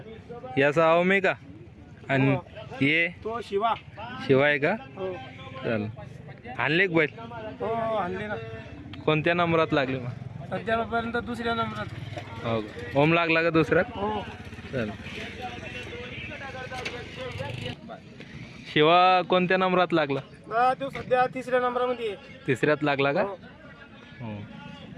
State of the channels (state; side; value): identical; both; correlation 1.00